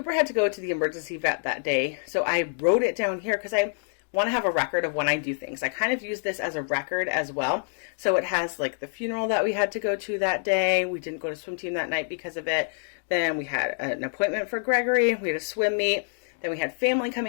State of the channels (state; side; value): silent; right; 60 dB below the other